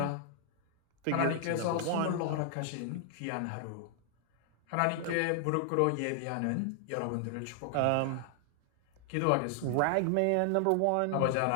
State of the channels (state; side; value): different; both; correlation 0.00